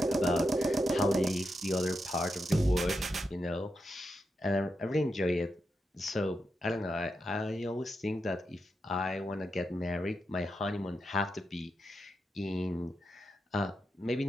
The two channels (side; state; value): both; normal; correlation 0.86